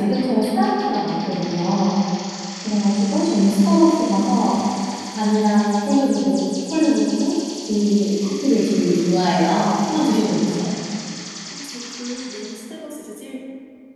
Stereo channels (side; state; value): both; identical; correlation 1.00